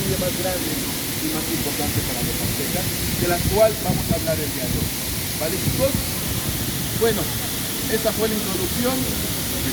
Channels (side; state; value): both; identical; correlation 1.00